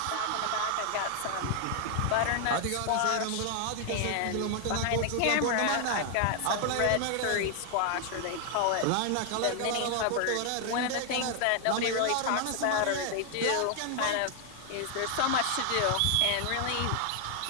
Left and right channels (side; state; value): both; different; correlation 0.00